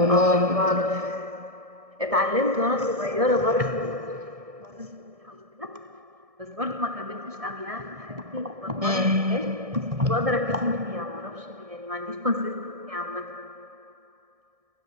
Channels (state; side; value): late; left; 1.6 ms